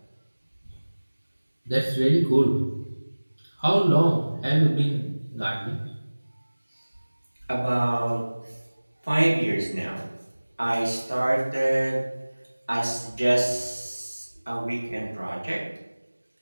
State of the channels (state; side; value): inverted; both; correlation -1.00